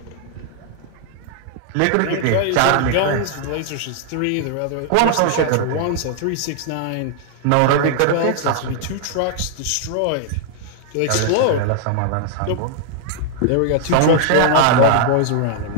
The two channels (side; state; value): both; different; correlation 0.00